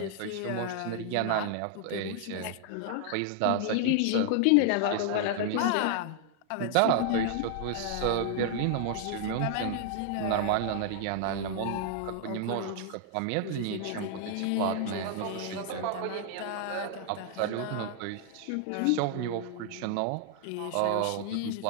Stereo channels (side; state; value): both; different; correlation 0.00